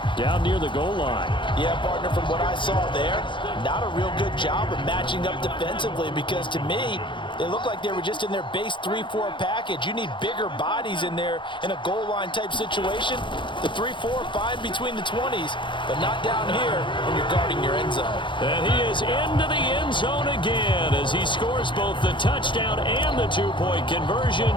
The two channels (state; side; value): late; right; 0.23 ms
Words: down near the goal line. Yeah, partner, from what I saw there, not a real good job of matching up defensively because to me, they look like they were just in their base 3-4 package. You need bigger bodies in there in a goal line type situation. The 3-4, fine between the 20s, but not down here when you're guarding your end zone. And he is into the end zone again as he scores both the touchdown and the 2-point conversion